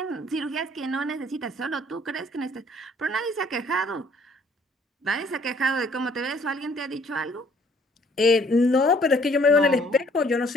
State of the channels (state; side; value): normal; both; correlation 0.60